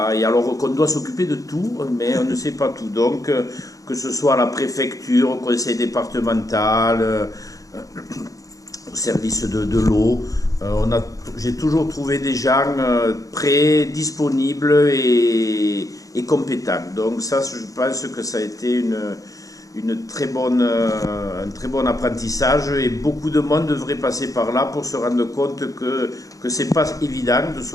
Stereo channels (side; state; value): right; late; 0.17 ms